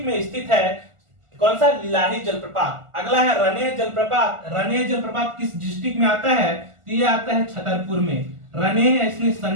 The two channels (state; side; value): late; left; 1.4 ms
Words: में स्थित है। कौन सा? लिलाही जलप्रपात। अगला है रनेह जलप्रपात। रनेह जलप्रपात किस डिस्ट्रिक्ट में आता है? तो ये आता है छतरपुर में। रनेह इसमें